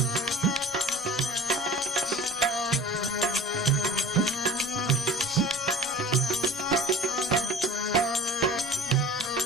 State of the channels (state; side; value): normal; both; correlation 0.40